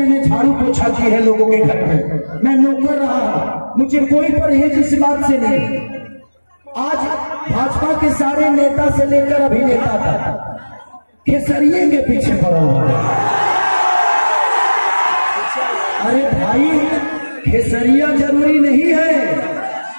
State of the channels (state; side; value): inverted; both; correlation -1.00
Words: झाड़ू पोछा की है लोगों के घर में, मैं नौकर रहा, मुझे कोई परहेज इस बात से नहीं। आज भाजपा के सारे नेता से लेकर अभिनेता तक खेसरिये के पीछे पड़ा हुआ है। अरे भाई, खेसरिया जरूरी नहीं है,